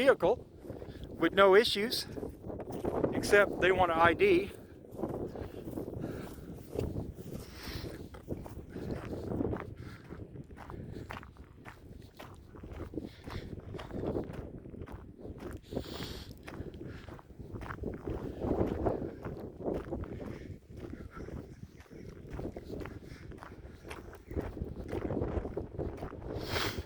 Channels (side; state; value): both; identical; correlation 1.00